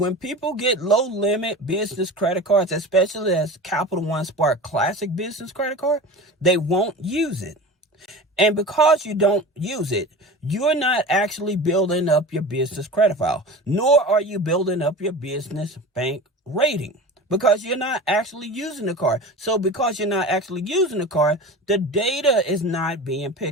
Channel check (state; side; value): normal; both; correlation 0.33